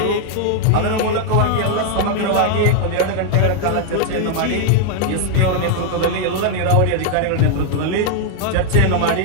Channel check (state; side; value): different; both; correlation 0.00